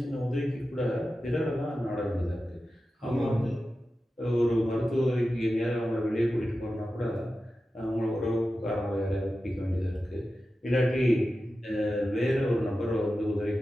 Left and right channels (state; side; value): normal; both; correlation 0.93